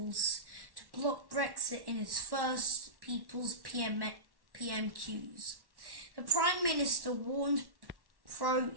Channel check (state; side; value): late; left; 1.1 ms